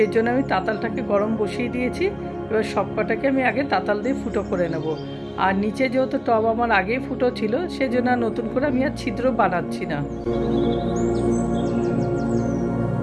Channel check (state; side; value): identical; both; correlation 1.00